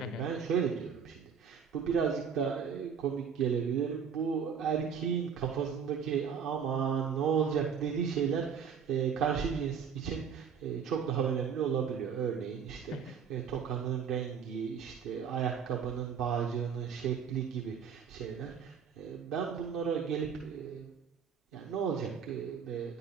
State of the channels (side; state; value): left; quieter; 7.0 dB